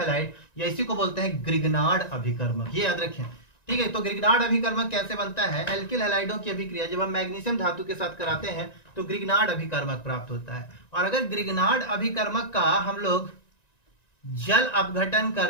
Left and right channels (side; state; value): right; late; 1.9 ms